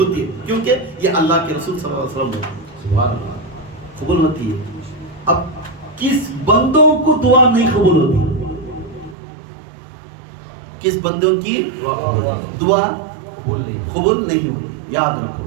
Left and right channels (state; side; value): drops out; left; at 9.2 s